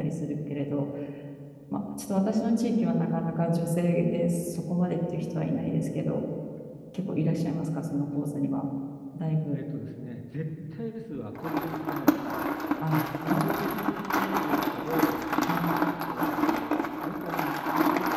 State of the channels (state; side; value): identical; both; correlation 1.00